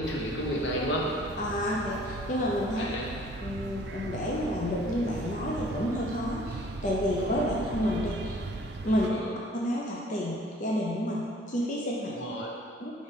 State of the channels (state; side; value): normal; both; correlation 0.54